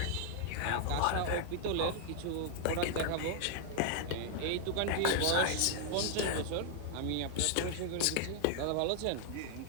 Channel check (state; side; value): different; both; correlation 0.00